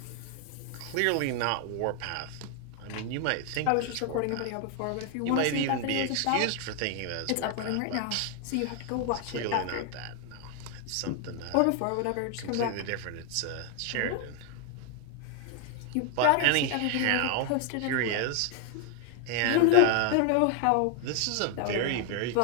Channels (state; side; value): different; both; correlation 0.00